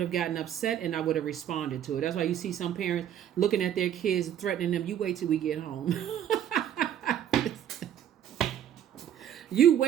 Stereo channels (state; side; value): quieter; left; 10.2 dB